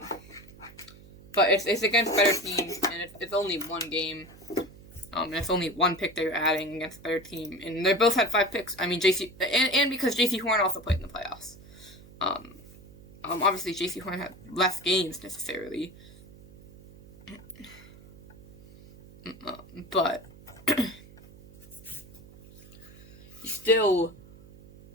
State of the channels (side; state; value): right; noise; hum, 21 dB below the sound